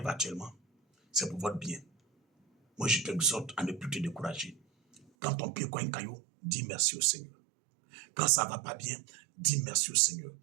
actuellement, c'est pour votre bien. Moi, je t'exhorte à ne plus te décourager. Quand ton pied cogne un caillou, dis merci au Seigneur. Quand ça ne va pas bien, dis merci au Seigneur.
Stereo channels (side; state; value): left; drops out; at 5.1 s